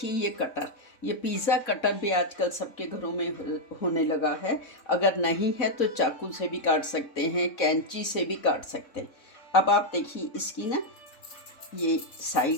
ये कटर, ये पिज़्ज़ा कटर भी आजकल सबके घरों में होने लगा है। अगर नहीं है तो चाकू से भी काट सकते हैं, कैंची से भी काट सकते हैं। अब आप देखिए इसकी ना ये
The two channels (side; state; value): right; late; 3.6 ms